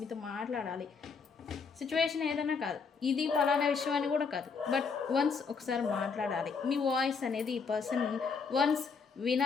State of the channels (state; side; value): quieter; right; 5.3 dB